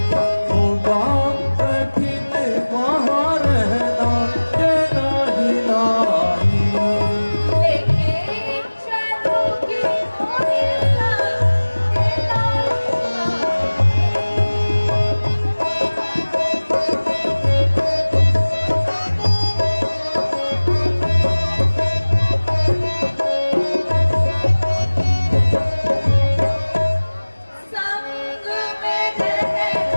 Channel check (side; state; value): both; inverted; correlation -1.00